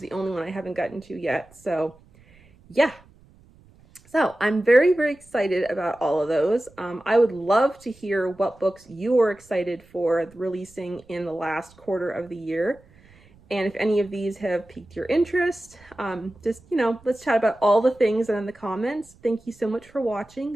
the only one I haven't gotten to yet. So yeah. So I'm very, very excited about all of those. I would love to hear what books you are excited for releasing in the last quarter of the year. And if any of these have piqued your interest, just, you know, let's chat about all the things in the comments. Thank you so much for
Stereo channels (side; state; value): right; noise; rumble, 27 dB below the sound